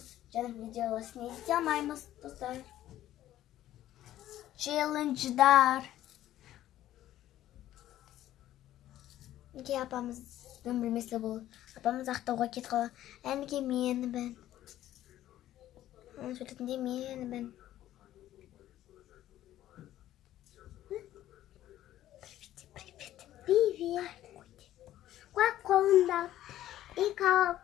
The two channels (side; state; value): right; quieter; 13.2 dB